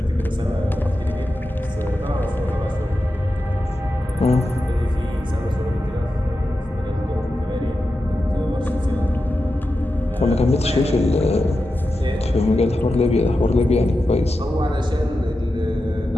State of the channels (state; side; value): normal; both; correlation 0.91